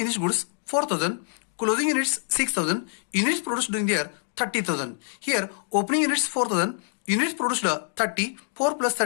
goods 4,000. Closing units 6,000. Units produced during the year 30,000. Here opening units 4,000. Units produced 30. 4 plus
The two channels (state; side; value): silent; right; digital silence